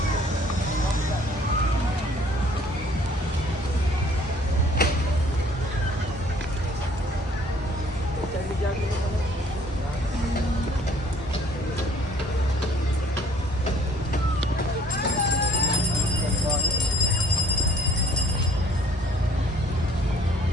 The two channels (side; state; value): both; normal; correlation 0.58